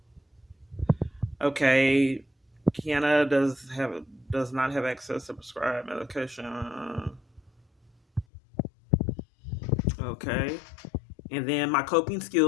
Okay. Kiana does not have access to prescribed medication. Okay. And then my coping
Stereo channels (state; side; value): drops out; right; at 8.2 s